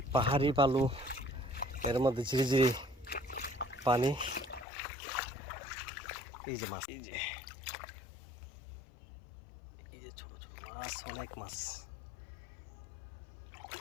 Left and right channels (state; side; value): drops out; right; at 4.7 s